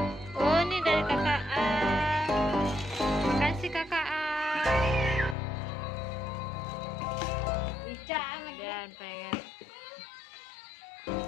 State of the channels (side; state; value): right; drops out; at 5.4 s